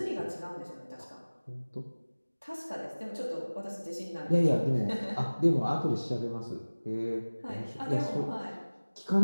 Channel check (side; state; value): both; inverted; correlation -1.00